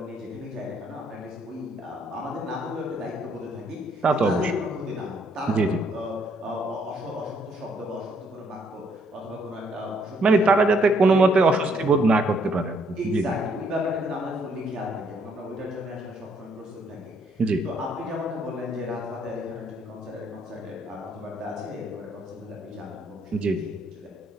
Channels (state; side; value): normal; both; correlation 0.69